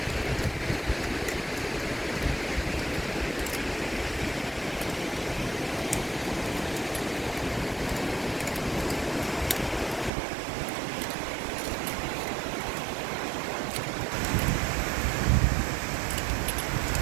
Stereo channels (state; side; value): drops out; left; at 10.1 s